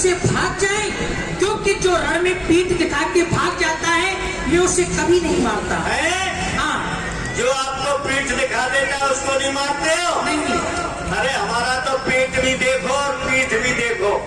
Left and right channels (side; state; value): both; identical; correlation 1.00